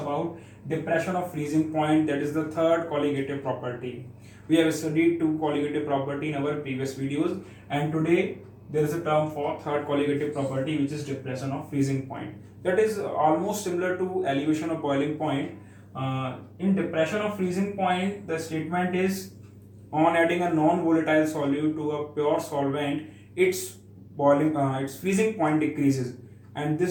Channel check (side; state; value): both; identical; correlation 1.00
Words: depression of freezing point, that is the third colligative property. We have studied two colligative property in our previous videos and today there is a term for third colligative property which is depression of freezing point. That is almost similar to elevation of boiling point. In depression of freezing point, the statement is on adding a non-volatile solute to a pure solvent, its freezing point decreases, and